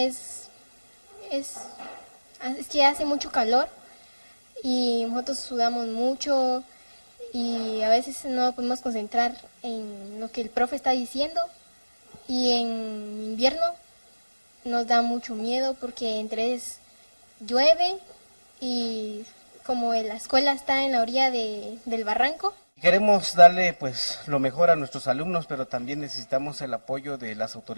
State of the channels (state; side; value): inverted; both; correlation -1.00